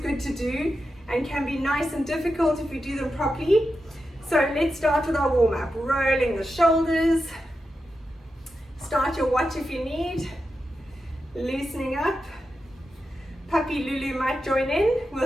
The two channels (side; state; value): both; normal; correlation 0.89